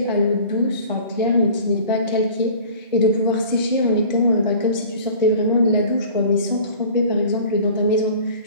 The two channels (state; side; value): inverted; both; correlation -0.45